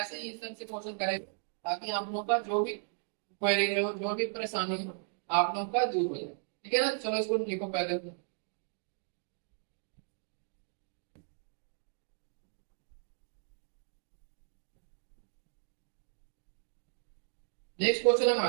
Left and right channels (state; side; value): silent; left; digital silence